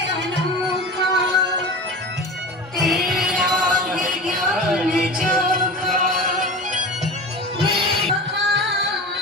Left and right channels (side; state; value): both; normal; correlation 0.31